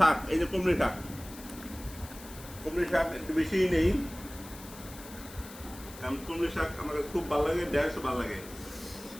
এই যে কুমড়ি শাক। কুমড়ি শাক একটু বেশিই নেই, কারণ কুমড়ি শাক আমার কাছে খুব ভালো লাগে, ঢেঁড়সও ভালো লাগে।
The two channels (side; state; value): left; noise; hiss, 16 dB below the sound